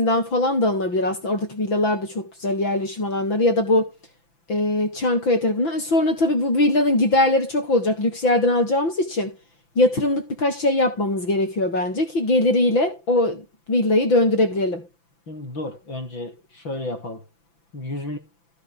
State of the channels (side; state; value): right; late; 5.9 ms